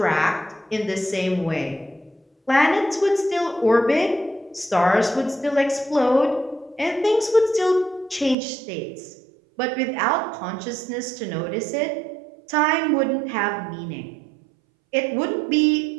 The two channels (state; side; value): drops out; left; at 8.3 s